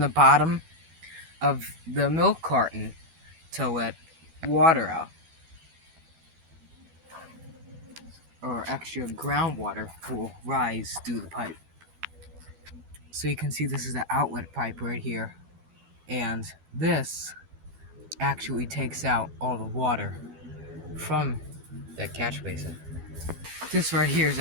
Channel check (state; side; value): late; left; 12 ms